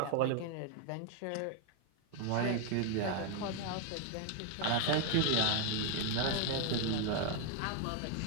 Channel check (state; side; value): different; both; correlation 0.00